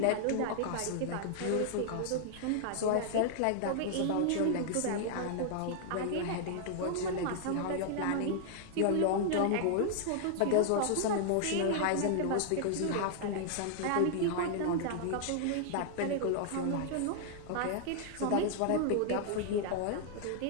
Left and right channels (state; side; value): different; both; correlation -0.01